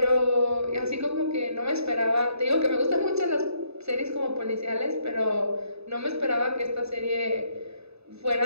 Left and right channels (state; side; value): late; left; 0.79 ms